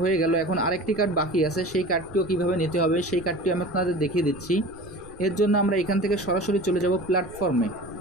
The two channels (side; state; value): right; noise; rumble, 21 dB below the sound